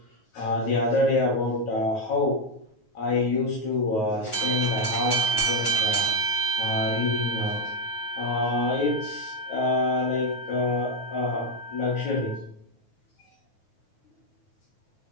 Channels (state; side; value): late; right; 9.4 ms